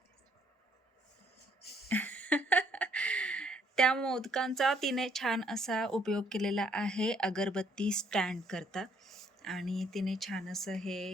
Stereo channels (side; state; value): both; normal; correlation 0.67